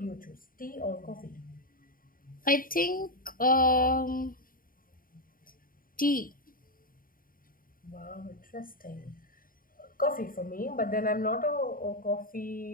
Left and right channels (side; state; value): right; late; 0.41 ms